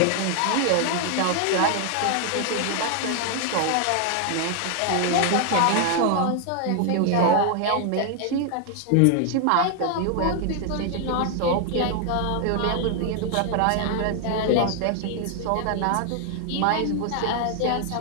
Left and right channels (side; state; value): both; different; correlation 0.00